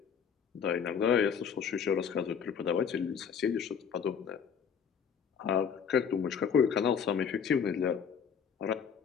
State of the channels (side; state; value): right; quieter; 7.2 dB